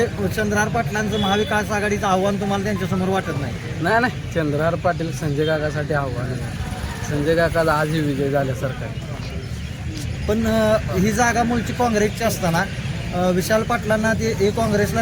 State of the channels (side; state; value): both; identical; correlation 1.00